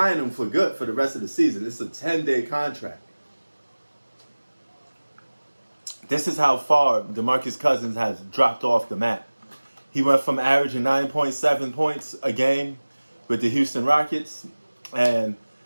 him for good for the rest of the season. It's a 10-day contract. This is how far DeMarcus Cousins has dropped off the map. He went from averaging 9.7 points a game with the Houston Rockets, and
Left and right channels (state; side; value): inverted; both; correlation -1.00